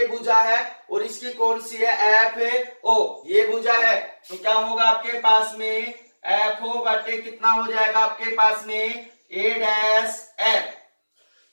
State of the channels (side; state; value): both; inverted; correlation -1.00